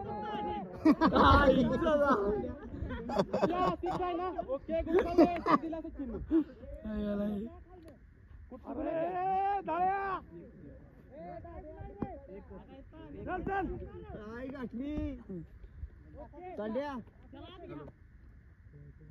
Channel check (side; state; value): both; identical; correlation 1.00